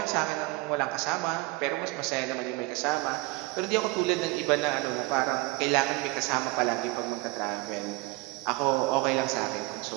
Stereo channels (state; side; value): quieter; left; 23.4 dB